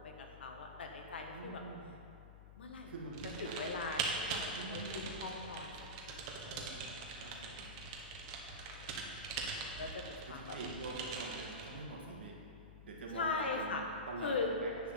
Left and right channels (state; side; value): noise; left; hum, 15 dB below the sound